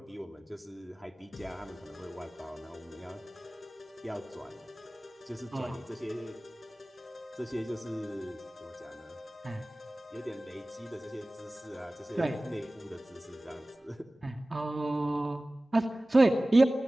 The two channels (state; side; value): normal; both; correlation 0.98